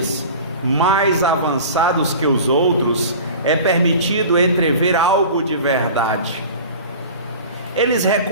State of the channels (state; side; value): inverted; both; correlation -0.38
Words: mais avançados que os outros, é permitido entrever algo de verdade. Eles